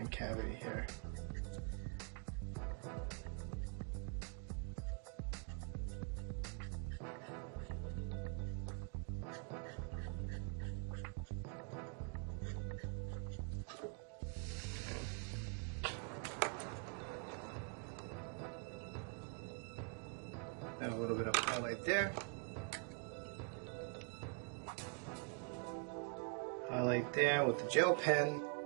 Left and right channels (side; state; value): left; quieter; 35.7 dB